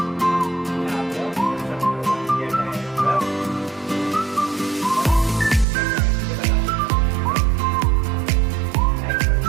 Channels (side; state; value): left; drops out; at 5.7 s